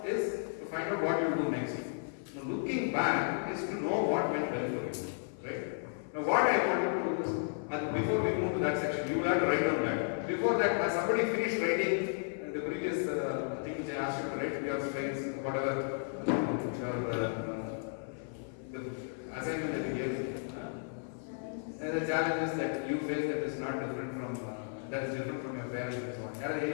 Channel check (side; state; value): right; silent; 55 dB below the other